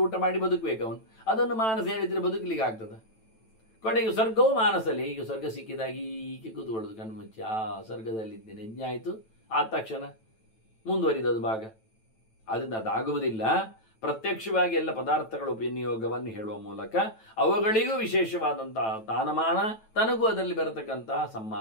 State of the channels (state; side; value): late; right; 9.1 ms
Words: ಊಟ ಮಾಡಿ ಬದುಕಬೇಕು ಅವನು. ಅದನ್ನು ಮಾನಸ ಹೇಳಿದ್ರೆ ಬದುಕಲಿಕ್ಕೆ ಆಗ್ತದೆ. ಕೊನೆಗೆ ಸ್ವರ್ಗವೂ ಮಾನಸಲ್ಲಿ. ಈಗ ಸ್ವರ್ಗ ಸಿಕ್ಕಿದಾಗಿ ಹೀಗೆ ಕೂತ್ಕೊಳ್ಳೋದು ಕಣ್ಣು ಮುಚ್ಚಿ, ಆ ಸ್ವರ್ಗದಲ್ಲಿದ್ದೇನೆ, ಯಜ್ಞ ಆಯಿತು, ಆದ ತಕ್ಷಣ ಮುಂದುವರಿದದು ಭಾಗ. ಅದರಿಂದ ಅದಾಗುವುದಿಲ್ಲ. ಪ್ರತ್ಯಕ್ಷವಾಗಿ ಎಲ್ಲ ಪದಾರ್ಥಗಳ ವಿನಿಯೋಗವನ್ನು ಹೇಳುವ ಮೂಲಕ ಅವುಗಳಿಗೂ ವಿಶೇಷವಾದಂತಹ ತಾನಮಾನ, ತನಗೂ ಅದರಲ್ಲಿ ಬರತಕ್ಕಂತಹ